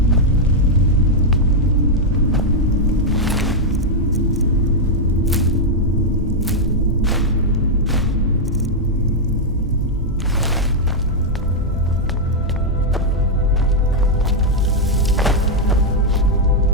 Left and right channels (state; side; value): normal; both; correlation -0.02